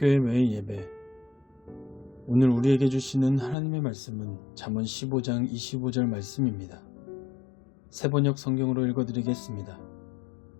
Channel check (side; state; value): right; drops out; at 3.6 s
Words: 매일 예배. 오늘 우리에게 주시는 하나님의 말씀은 잠언 15장 25절 말씀입니다. 새번역 성경으로 읽어드리겠습니다.